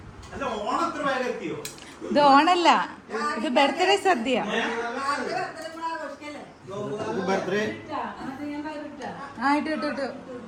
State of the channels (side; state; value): both; identical; correlation 1.00